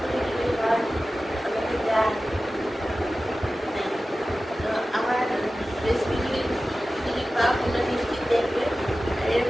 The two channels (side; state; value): both; normal; correlation 0.95